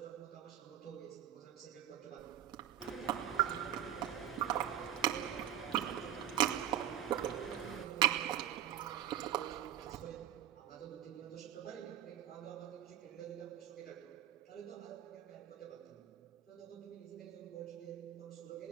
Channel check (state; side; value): quieter; left; 11.2 dB